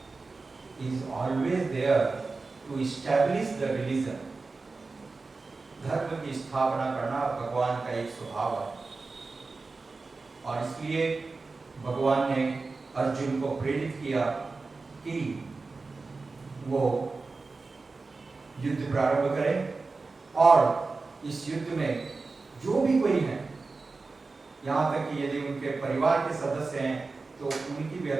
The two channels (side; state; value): left; quieter; 3.9 dB